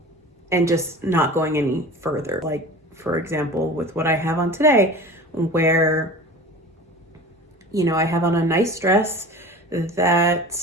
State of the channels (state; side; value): normal; both; correlation 0.37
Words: just not going any further. Like, for example, with what I have on today, where, I have on a nice dress